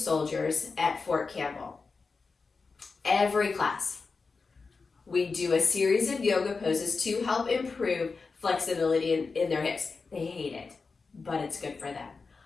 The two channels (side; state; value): right; quieter; 4.5 dB